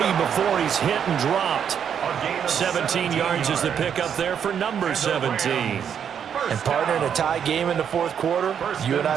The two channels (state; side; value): quieter; left; 8.1 dB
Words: before he's hit and dropped. 17 yards is the pickup there for number 17. And partner, in a tie game in the 4th quarter, you and